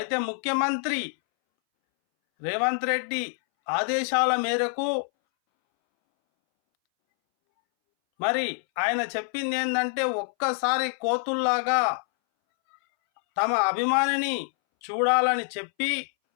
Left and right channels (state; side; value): silent; right; 61 dB below the other